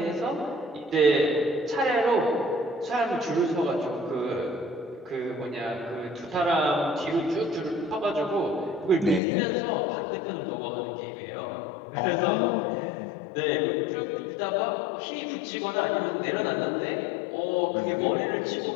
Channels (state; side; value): drops out; right; at 9.2 s